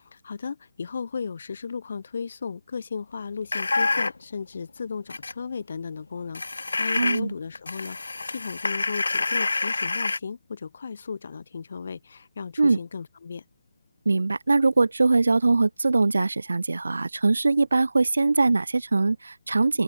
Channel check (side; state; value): both; inverted; correlation -0.95